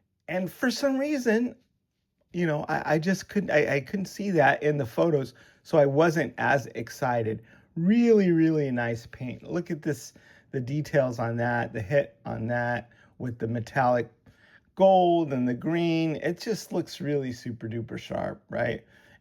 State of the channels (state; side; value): identical; both; correlation 1.00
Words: for some reason, I just couldn't see that in the photos. So I wasn't as excited. Really, really nice paint. Look at this, the details on that, the hit on that with the metallic gold and the green. It just looks really super duper sharp, right?